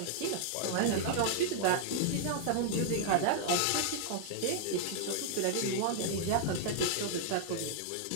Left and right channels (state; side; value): different; both; correlation -0.01